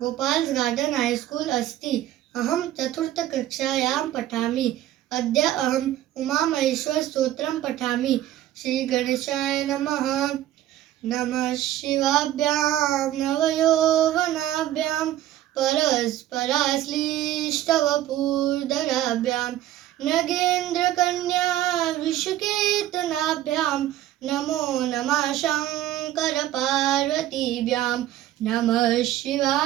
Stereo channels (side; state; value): left; quieter; 13.2 dB